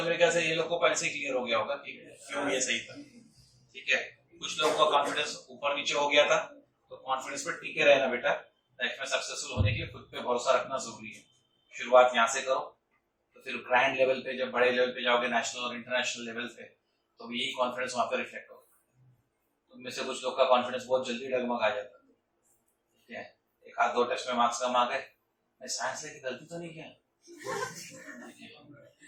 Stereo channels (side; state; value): both; identical; correlation 1.00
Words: मेरे ख्याल से ये लोग को पहले से क्लियर हो गया होगा कि क्यों ये सही था। ठीक है, कुछ लोगों का कॉन्फिडेंस ऊपर नीचे हो गया था, तो कॉन्फिडेंस पर टिके रहना बेटा। लाइफ में सक्सेसफुल होने के लिए खुद पे भरोसा रखना जरूरी है। शुरुआत यहाँ से करो, तो फिर ग्रैंड लेवल पे, जब बड़े लेवल पे जाओगे, नेशनल और इंटरनेशनल लेवल पे, तो यही कॉन्फिडेंस वहां पे रिफ्लेक्ट होगा। तुम में से कुछ लोग का कॉन्फिडेंस बहुत जल्दी डगमगा जाता है। ठीक है, 1-2 टेस्ट में मार्क्स कम आ गए, मैं साइंस लेके गलती तो नहीं किया।